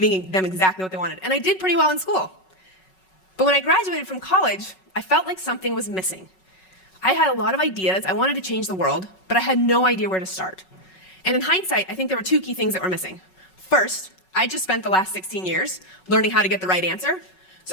them exactly what they wanted. And I did pretty well in school. But when I graduated from college, I felt like something was missing. I had a lot of ideas, I wanted to change the world, but I had no idea where to start. And in hindsight, I think there were 2 key things that were missing. First, I just spent the last 16 years learning how to get the right answer,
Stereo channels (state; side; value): late; right; 5.4 ms